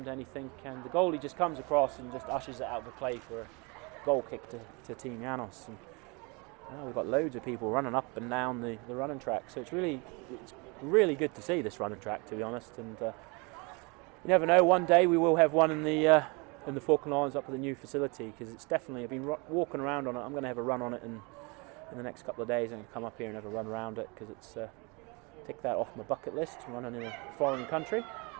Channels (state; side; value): quieter; left; 29.6 dB